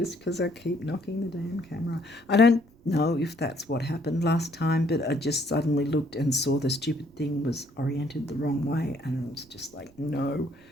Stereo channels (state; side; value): noise; right; rumble, 29 dB below the sound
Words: because I keep knocking the damn camera. I don't know if that's what happened last time, but I just suddenly looked and saw the stupid thing was oriented the wrong way, and it was just like, no.